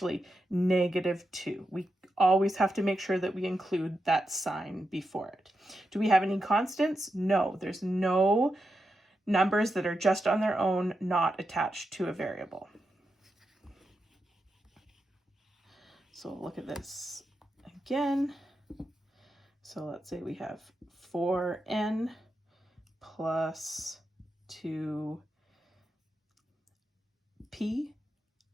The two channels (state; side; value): normal; both; correlation 0.87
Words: -2. We always have to make sure that we include that sign before it. Do we have any constants? No, there's no numbers that are just on their own, not attached to a variable. So look at this again. So let's say we have 4n plus 2p